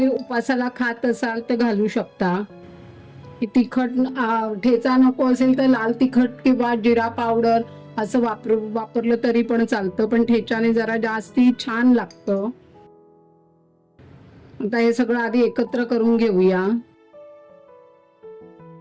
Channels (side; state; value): both; identical; correlation 1.00